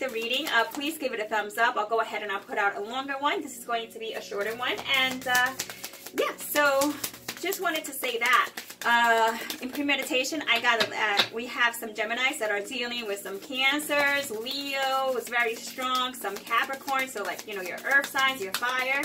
reading, please give it a thumbs up. I'll go ahead and I'll put out a longer one. This is going to be a shorter one, and yeah, so just wanted to say that. In premeditation, I got we have some Geminis that are dealing with some Cancers, Leo is very strong, some Capricorn, so like, you know, your earth signs, your fire,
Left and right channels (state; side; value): identical; both; correlation 1.00